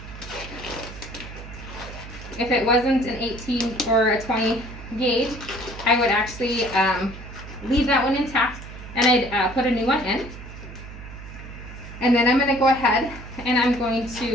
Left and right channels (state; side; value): noise; right; hum, 13 dB below the sound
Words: If it wasn't an 18 or a 20 gauge, I would actually leave that one intact, and I'd put a new one in. And then I'm going to go ahead and I'm going